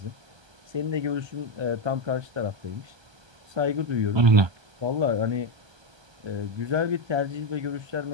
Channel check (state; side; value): late; left; 1.2 ms